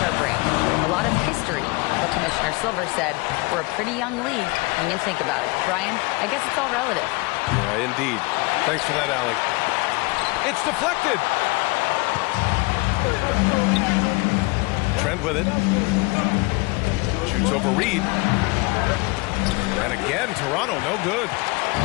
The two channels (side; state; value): right; quieter; 26.1 dB